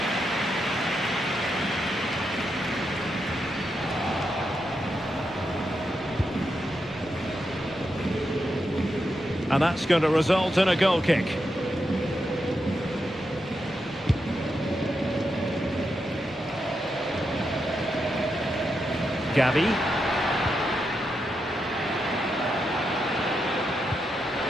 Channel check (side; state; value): both; normal; correlation 0.85